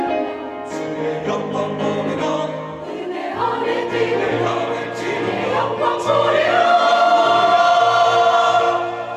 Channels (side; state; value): both; identical; correlation 1.00